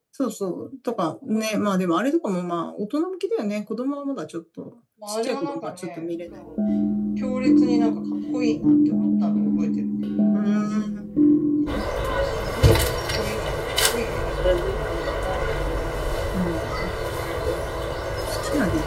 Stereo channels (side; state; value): both; identical; correlation 1.00